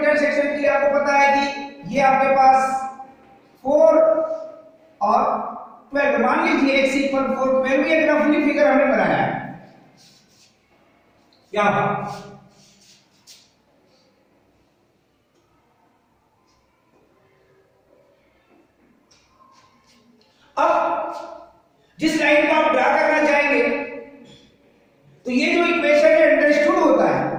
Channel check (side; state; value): both; identical; correlation 1.00